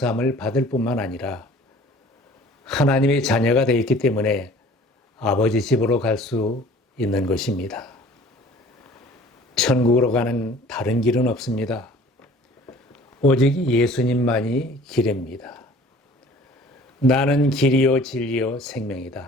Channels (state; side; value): normal; both; correlation 0.49